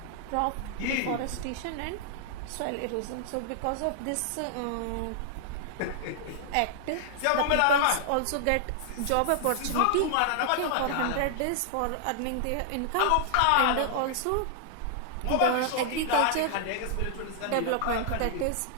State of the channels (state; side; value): different; both; correlation -0.01